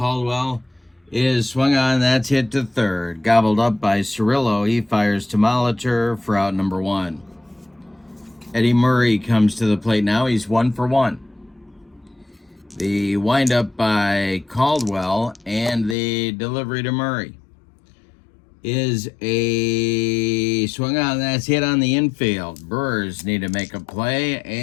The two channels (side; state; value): right; drops out; at 16.0 s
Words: is swung on. That's hit to third. Gobbled up by Cirillo. He fires to Molitor for out number 1. Eddie Murray comes to the plate now. He's 1 for 1. The windup by Caldwell and the delivery to Murray is a swung on. That's hit on the infield. Brewers need to make a play,